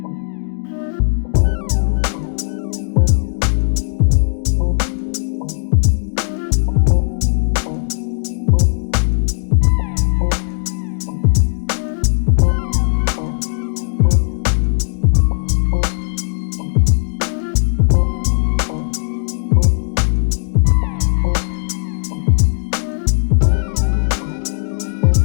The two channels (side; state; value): right; silent; digital silence